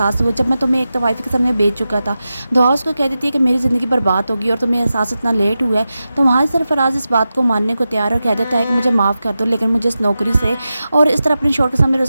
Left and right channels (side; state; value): both; inverted; correlation -0.92